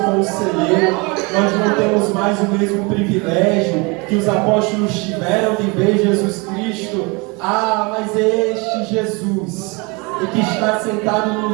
Nós não temos mais o mesmo privilégio que os apóstolos tiveram de ver Jesus Cristo. Mas é este Jesus, e que está sentado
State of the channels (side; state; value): left; quieter; 28.5 dB